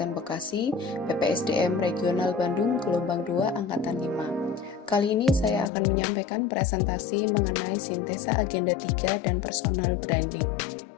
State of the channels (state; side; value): drops out; right; at 5.7 s